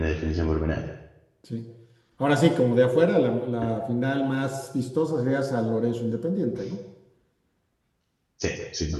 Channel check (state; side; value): identical; both; correlation 1.00